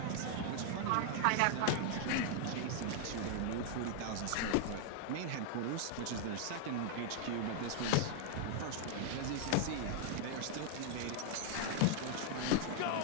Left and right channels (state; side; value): different; both; correlation 0.00